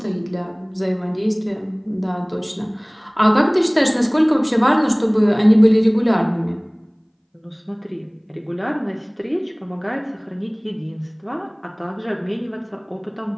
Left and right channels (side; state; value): both; identical; correlation 1.00